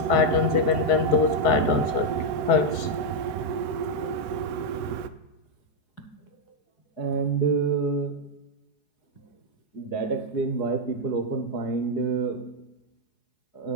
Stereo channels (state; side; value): late; right; 4.7 ms